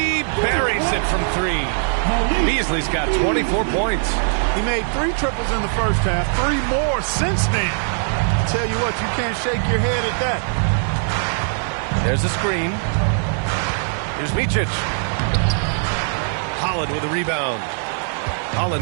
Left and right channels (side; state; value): left; silent; digital silence